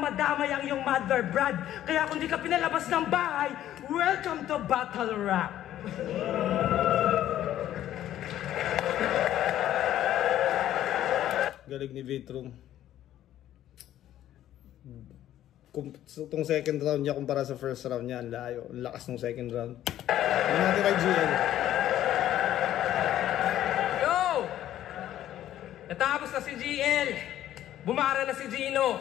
madamay ang iyong mother brad. Kaya kung di ka pinalabas ng bahay, welcome to Battle Rap. Galing ni Vitro. Itong second round niya kumpara sa first round niya, ang layo. Ang lakas ng second round. Ano natin kay GL? Yo! Natapos na si GL. Bumara na si Gino.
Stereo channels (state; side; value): quieter; right; 12.3 dB